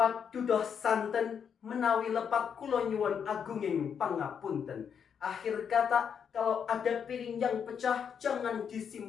dudoh santen menawi lepat kula nyuwun agunging pangapunten. Akhir kata, kalau ada piring yang pecah jangan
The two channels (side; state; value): right; quieter; 7.4 dB